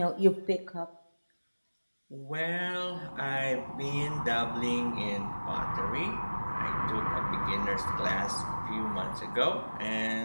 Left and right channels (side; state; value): both; inverted; correlation -1.00